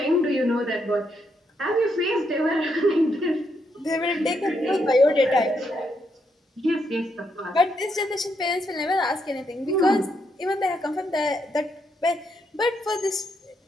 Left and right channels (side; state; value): both; normal; correlation 0.78